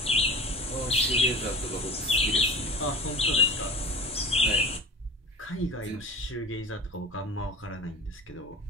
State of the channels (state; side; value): normal; both; correlation 0.35